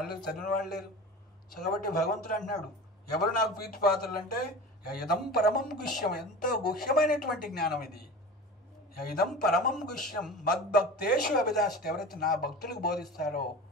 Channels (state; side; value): normal; both; correlation 0.34